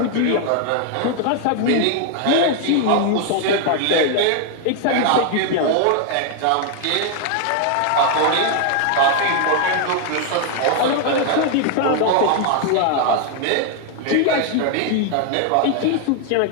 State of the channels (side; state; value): both; different; correlation 0.00